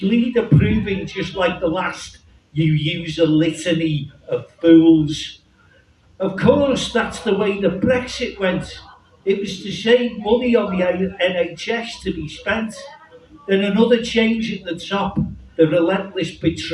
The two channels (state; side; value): identical; both; correlation 1.00